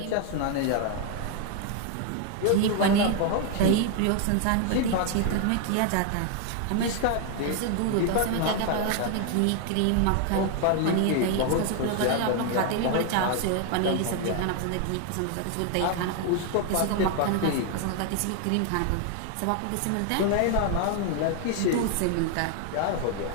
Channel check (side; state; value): both; different; correlation 0.00